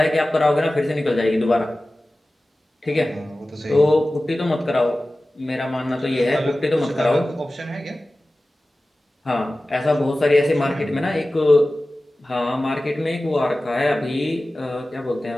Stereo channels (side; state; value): both; normal; correlation 0.96